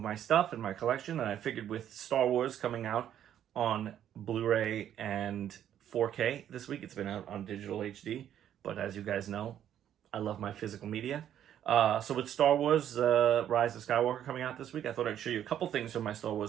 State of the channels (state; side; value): quieter; left; 10.4 dB